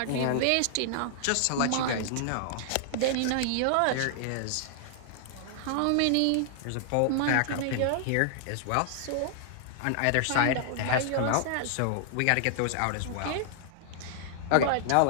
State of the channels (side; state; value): both; different; correlation -0.01